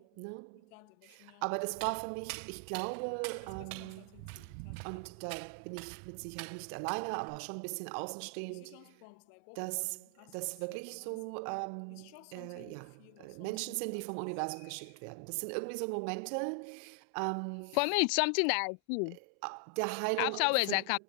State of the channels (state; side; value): different; both; correlation 0.00